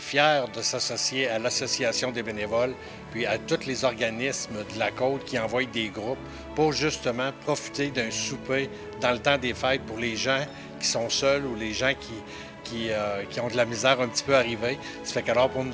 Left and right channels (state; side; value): identical; both; correlation 1.00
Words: de s'associer à l'Association des bénévoles puis à tous les organismes de la Côte qui envoient des groupes pour justement profiter d'un souper dans le temps des fêtes pour les gens qui sont seuls ou les gens qui ont de la misère un petit peu arrivée. Ça fait qu'alors pour